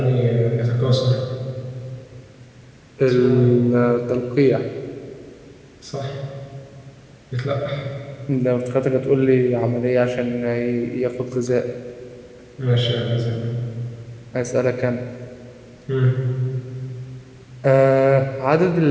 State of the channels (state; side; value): identical; both; correlation 1.00